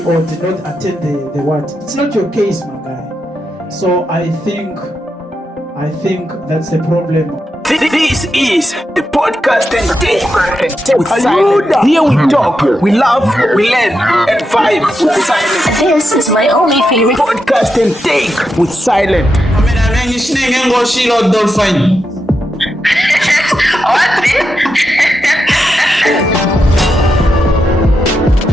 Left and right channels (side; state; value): both; normal; correlation 0.86